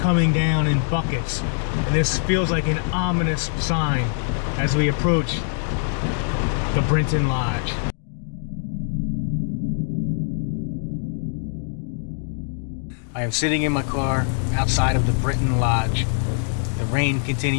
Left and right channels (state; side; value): silent; right; digital silence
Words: down in buckets, and this feels like an ominous sign as we approach the Brinton Lodge. I am sitting in my car outside of the Brinton Lodge. The rain